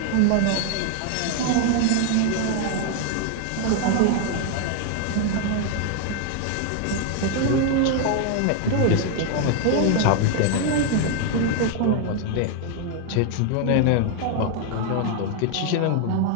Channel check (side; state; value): both; different; correlation 0.00